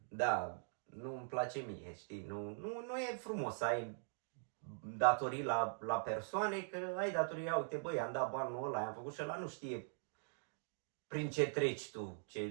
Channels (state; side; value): silent; left; digital silence